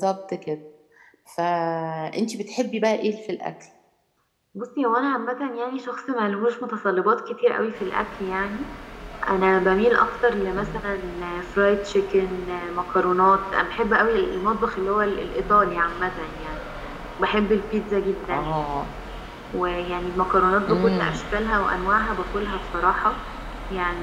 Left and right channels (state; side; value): identical; both; correlation 1.00